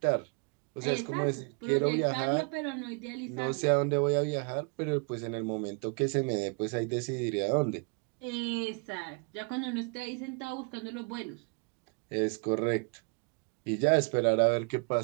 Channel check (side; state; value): left; quieter; 34.7 dB